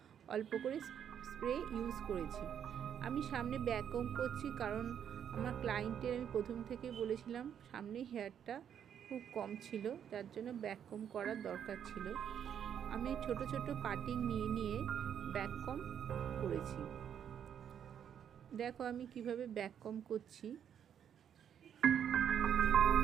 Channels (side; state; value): left; quieter; 8.8 dB